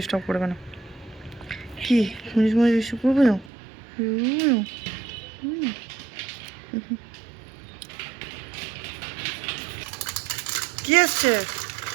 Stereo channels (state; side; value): drops out; left; at 3.5 s